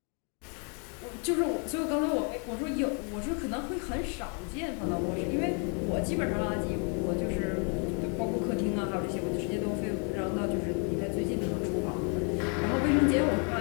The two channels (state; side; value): quieter; right; 39.0 dB